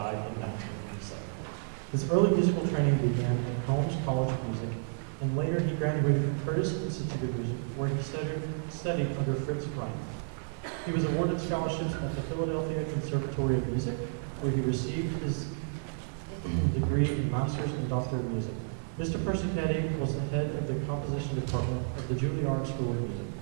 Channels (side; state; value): left; silent; digital silence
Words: in 1987. His early musical training began at Holmes College of Music, and later he graduated from Curtis Institute of Music, where he studied under Fritz Reiner. He was awarded scholarships at the Philadelphia Conservatory of Music, where he received his degree in Master's and Doctor of Music. Mr. Persichetti was the head of the composition department of the Juilliard School of Music.